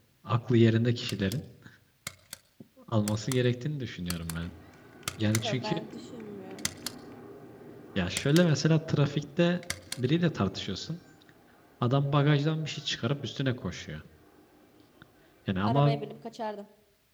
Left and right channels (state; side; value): identical; both; correlation 1.00